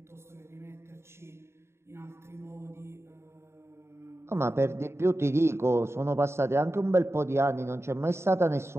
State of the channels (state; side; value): late; left; 0.13 ms